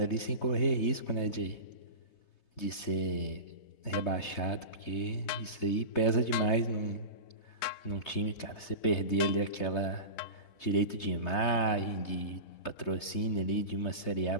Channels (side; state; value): right; late; 3.3 ms